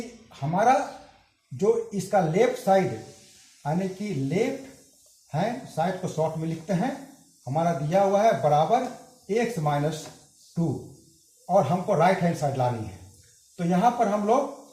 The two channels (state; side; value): identical; both; correlation 1.00